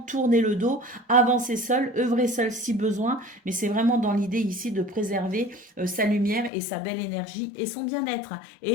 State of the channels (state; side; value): drops out; right; at 6.5 s